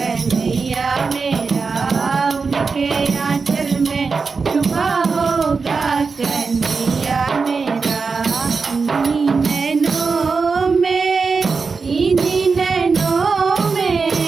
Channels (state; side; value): quieter; left; 4.8 dB